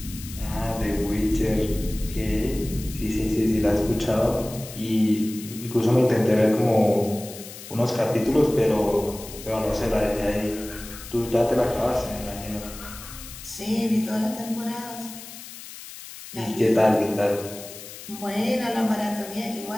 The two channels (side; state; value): left; noise; hiss, 14 dB below the sound